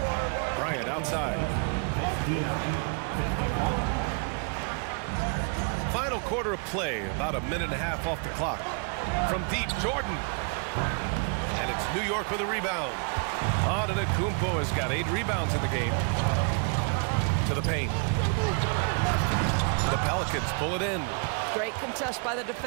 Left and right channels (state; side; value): quieter; left; 39.2 dB